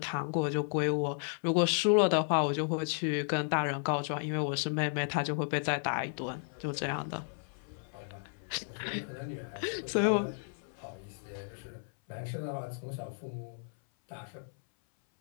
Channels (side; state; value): right; silent; 56 dB below the other